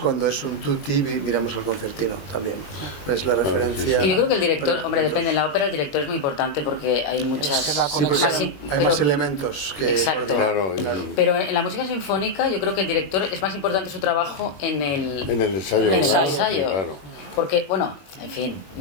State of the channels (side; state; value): right; late; 21 ms